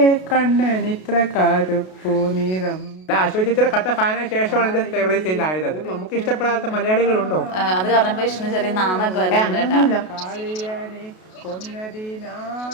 കണ്ണൻ ഇത്ര കറുപ്പു നിറം. അശോക് ചേച്ചിയുടെ കട്ട ഫാനായ ശേഷമാണ് എന്റെ ഫേവറേറ്റ് സ്റ്റൈലായത്. അത് നമുക്ക് ഇഷ്ടപ്പെടാത്ത മലയാളികളുണ്ടോ? അത് പറഞ്ഞപ്പോ വിഷ്ണു ചെറിയ നാണൊക്കെ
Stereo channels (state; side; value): late; right; 32 ms